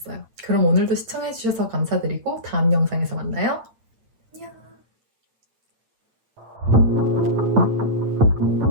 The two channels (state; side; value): late; left; 8.9 ms